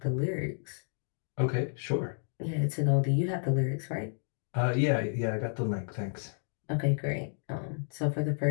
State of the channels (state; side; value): silent; right; digital silence